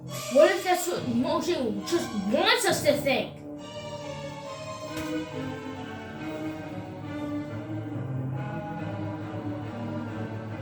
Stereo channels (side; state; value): both; identical; correlation 1.00